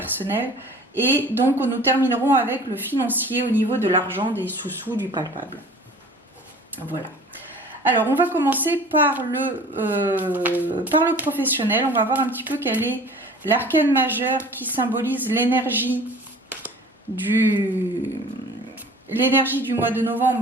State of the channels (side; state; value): both; normal; correlation 0.45